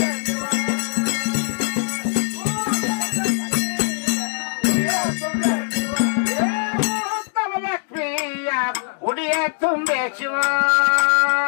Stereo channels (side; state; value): right; silent; digital silence